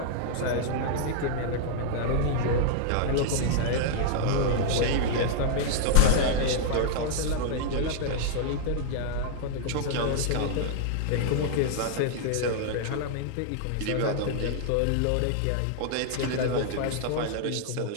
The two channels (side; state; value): both; different; correlation 0.00